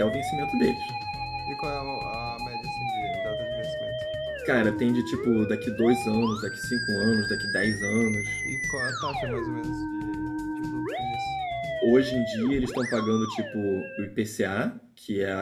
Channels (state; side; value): identical; both; correlation 1.00